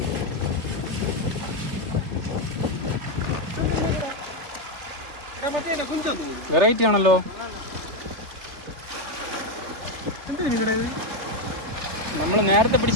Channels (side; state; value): left; late; 3.3 ms